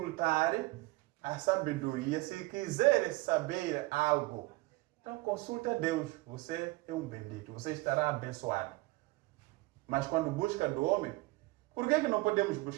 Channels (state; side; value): quieter; left; 21.7 dB